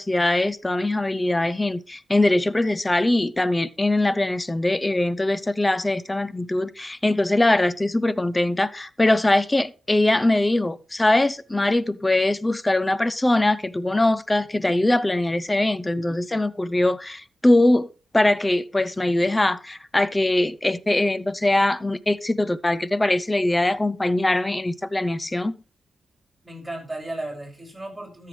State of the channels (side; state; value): both; normal; correlation 0.98